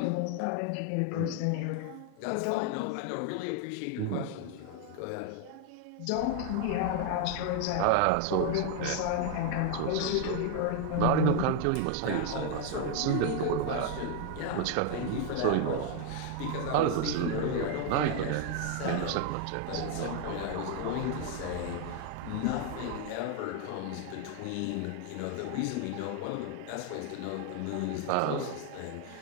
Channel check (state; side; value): different; both; correlation 0.00